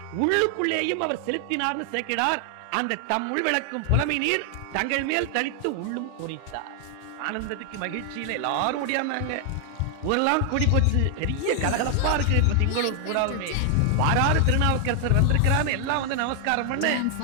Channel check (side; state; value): both; different; correlation 0.00